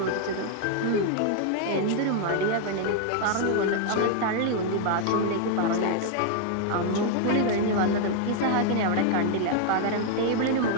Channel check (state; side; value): different; both; correlation 0.00